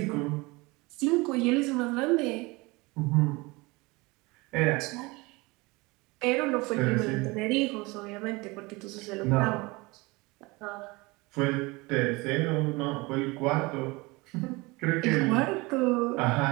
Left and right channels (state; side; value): quieter; left; 24.1 dB